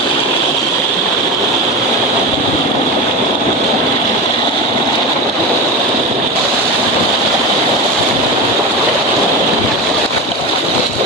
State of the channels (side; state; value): both; normal; correlation 0.23